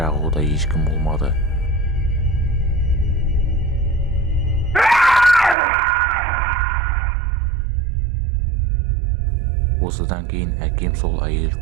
ода ешкім болмады. Осыдан кейін әкем сол әйел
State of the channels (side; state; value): left; drops out; at 5.6 s